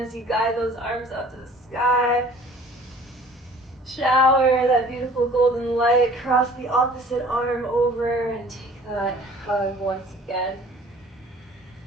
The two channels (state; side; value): normal; both; correlation 0.50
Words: you guide those arms up to the sky. Shower that beautiful golden light, cross the opposite arm over and take that hug once again.